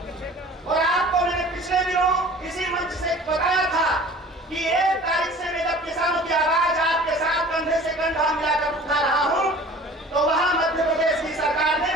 और आपको मैंने पिछले दिनों इसी मंच से बताया था कि 1 तारीख से मैं जब किसानों की आवाज आपके साथ कंधे से कंधा मिलाकर उठा रहा हूं, तो वहां मध्य प्रदेश की सरकार ने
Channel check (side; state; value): both; normal; correlation 0.45